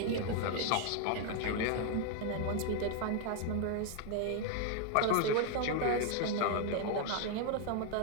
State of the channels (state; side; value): different; both; correlation 0.00